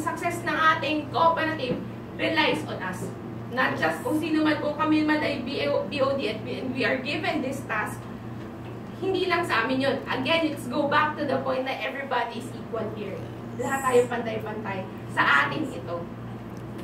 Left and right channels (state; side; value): identical; both; correlation 1.00